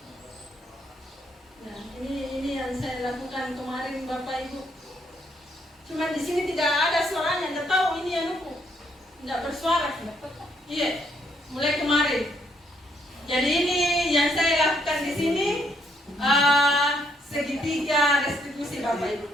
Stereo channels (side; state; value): both; normal; correlation 0.72